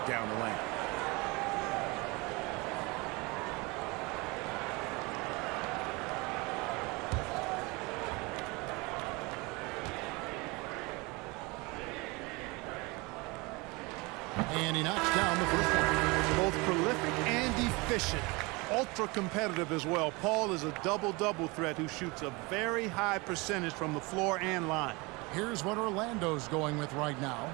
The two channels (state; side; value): quieter; left; 25.9 dB